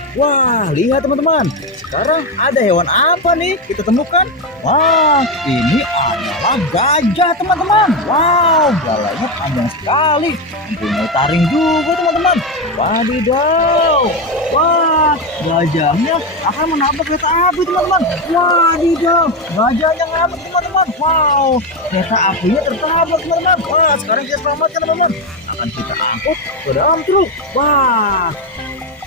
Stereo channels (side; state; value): both; normal; correlation 0.10